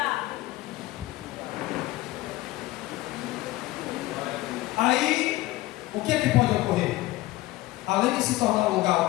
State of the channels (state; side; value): quieter; right; 18.2 dB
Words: Aí, o que é que pode ocorrer? Além de se tornar um lugar